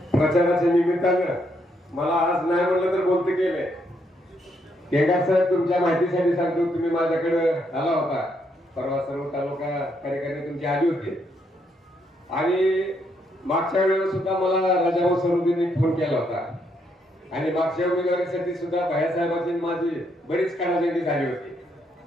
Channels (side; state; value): both; normal; correlation 0.75